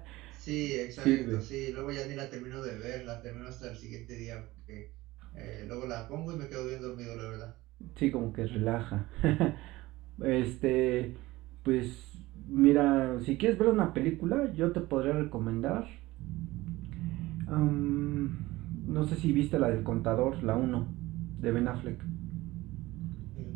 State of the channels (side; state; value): left; quieter; 18.9 dB